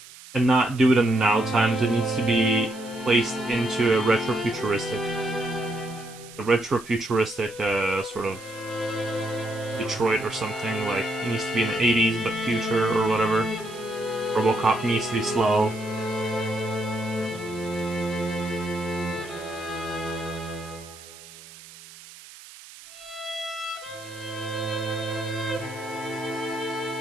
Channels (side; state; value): right; noise; hiss, 18 dB below the sound